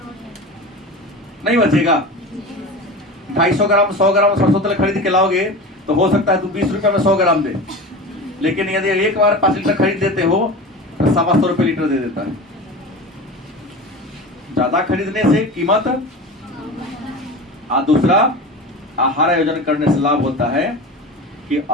नहीं बचेगा। 250 ग्राम 100 ग्राम सरसों तेल खरीद के लाओगे तो हो सकता है तो 20 रुपए में 100 ग्राम दे, लेकिन यदि एक बार 5 लीटर खरीद देते हो तो 125 रुपए लीटर दे देता है। ज्यादा खरीदने से कीमत। दूसरा, आहार आयोजन करने से लाभ होता है कि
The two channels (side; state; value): both; normal; correlation 0.30